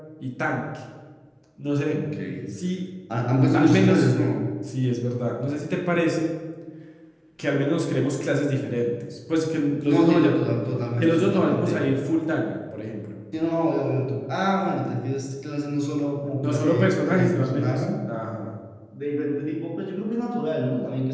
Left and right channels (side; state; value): both; identical; correlation 1.00